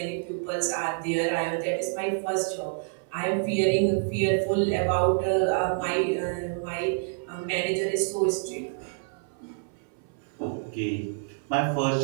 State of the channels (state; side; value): silent; left; 60 dB below the other